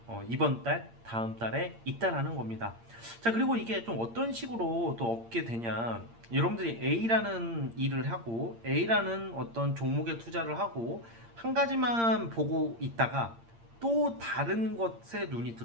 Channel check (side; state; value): left; late; 8.7 ms